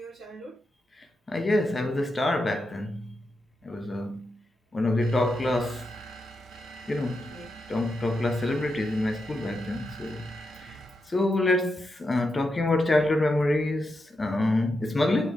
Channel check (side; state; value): both; normal; correlation 0.86